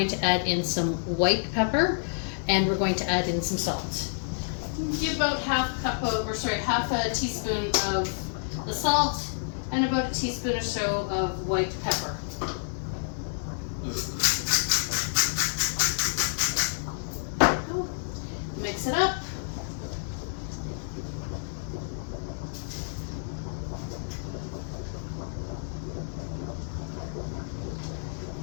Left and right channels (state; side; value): silent; right; 59 dB below the other